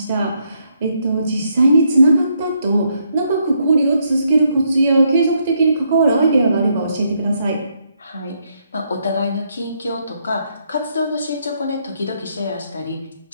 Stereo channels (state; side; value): inverted; both; correlation -0.75